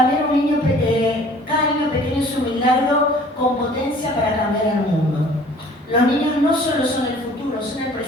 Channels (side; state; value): both; normal; correlation 0.51